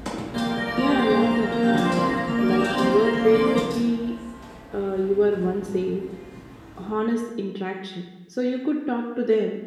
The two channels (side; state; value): both; identical; correlation 1.00